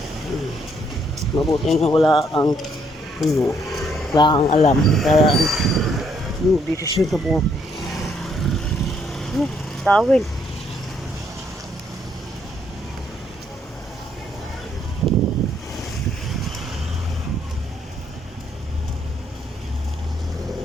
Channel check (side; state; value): both; normal; correlation 0.70